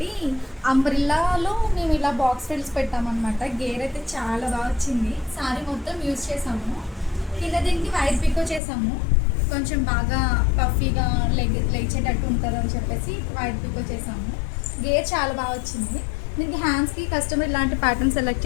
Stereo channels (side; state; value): right; drops out; at 8.6 s